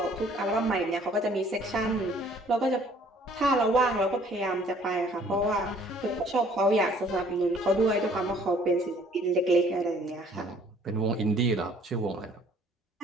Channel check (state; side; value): normal; both; correlation 0.58